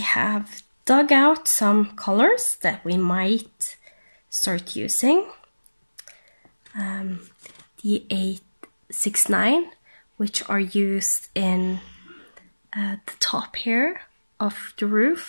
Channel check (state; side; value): inverted; both; correlation -1.00